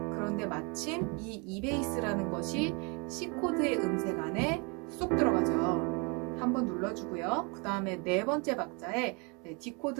그런데 마침 이 E베이스라는 것이 C코드의 음색 안에 쏙 들어가죠. 한번 눌러주고요. 그 다음에 네 번째 박자에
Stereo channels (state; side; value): quieter; left; 31.7 dB